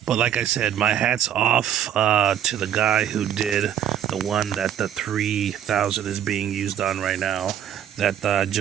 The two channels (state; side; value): quieter; left; 9.9 dB